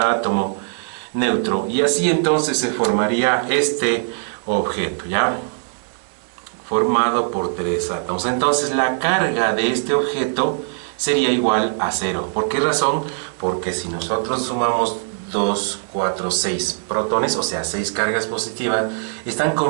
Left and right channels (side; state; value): left; silent; digital silence